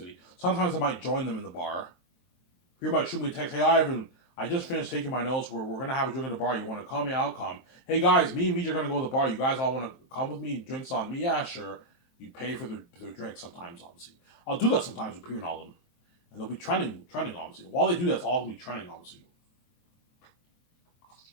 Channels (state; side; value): late; right; 23 ms